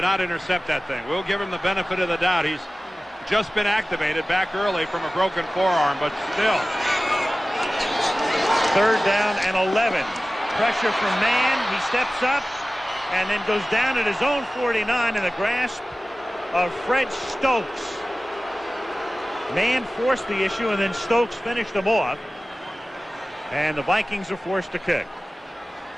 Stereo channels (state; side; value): normal; both; correlation 0.96